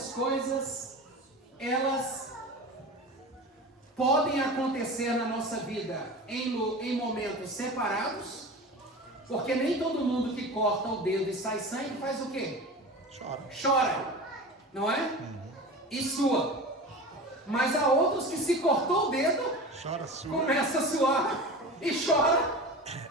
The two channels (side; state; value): both; normal; correlation 0.32